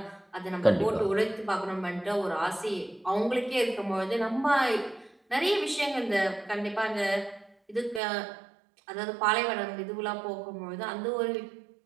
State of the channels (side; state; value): left; drops out; at 8.0 s